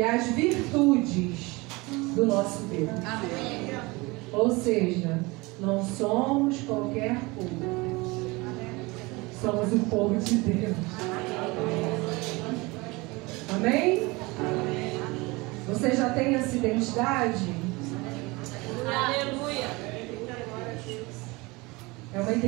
as virtudes do nosso Deus. Amém. Ou seja, não somos qualquer povo. Somos o povo de Deus. Amém? Você já tem essa identidade? Aleluia. É uma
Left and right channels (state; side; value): quieter; left; 24.1 dB